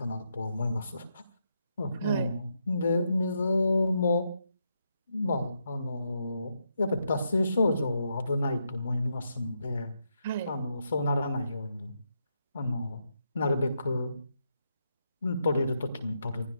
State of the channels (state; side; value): inverted; both; correlation -0.81